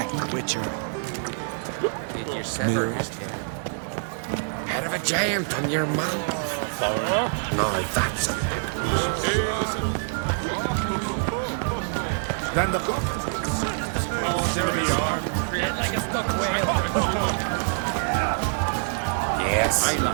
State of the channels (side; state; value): left; silent; digital silence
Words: Witcher. Did you sever his head? Head of a giant on your mouth. Foreigner? No, that's it. Hey, listen. Stand up. Oh, there we are. Dead like a stuck whale. Yes. I